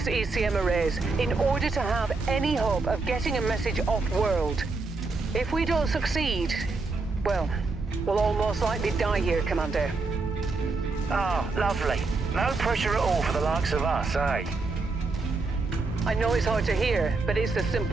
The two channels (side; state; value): left; quieter; 3.8 dB